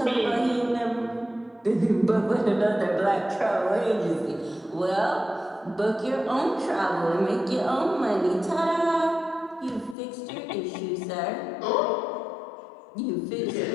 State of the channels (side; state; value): right; drops out; at 10.0 s